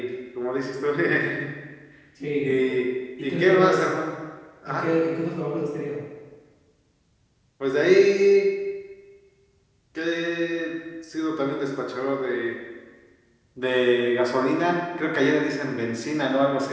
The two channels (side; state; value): both; identical; correlation 1.00